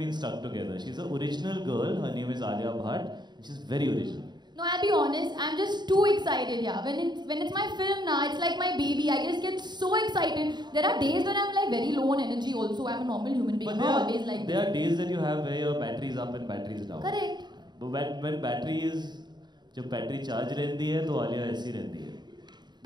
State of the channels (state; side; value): late; left; 0.21 ms